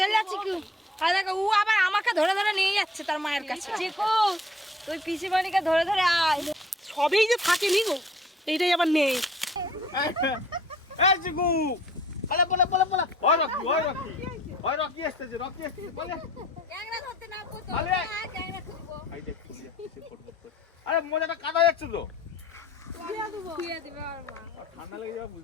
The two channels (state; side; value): normal; both; correlation 0.55